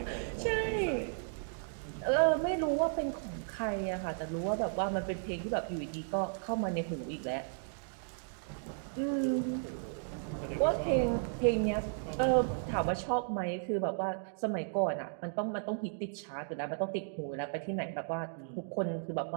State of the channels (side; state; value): left; silent; digital silence